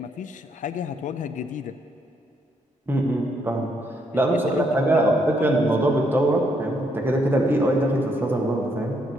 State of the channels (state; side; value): normal; both; correlation 0.74